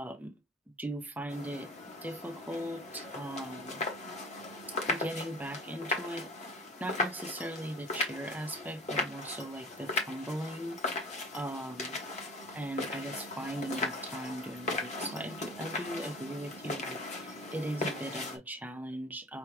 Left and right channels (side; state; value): both; normal; correlation 0.42